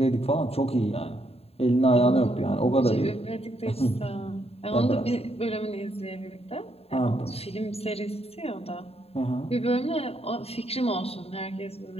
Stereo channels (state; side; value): late; right; 0.29 ms